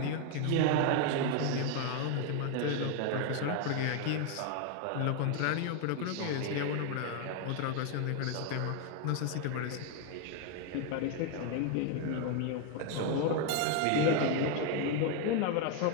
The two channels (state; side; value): different; both; correlation 0.01